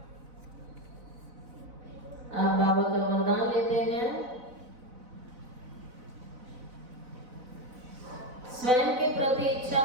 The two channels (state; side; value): late; left; 4.0 ms